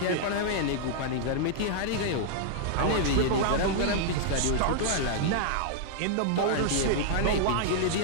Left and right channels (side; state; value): both; different; correlation -0.01